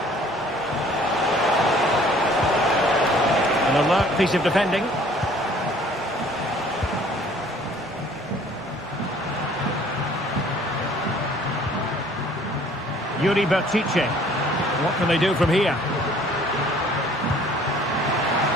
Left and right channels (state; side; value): normal; both; correlation 0.55